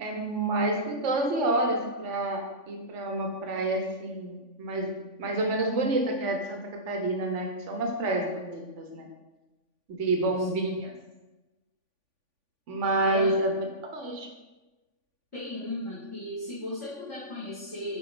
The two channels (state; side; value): late; left; 3.5 ms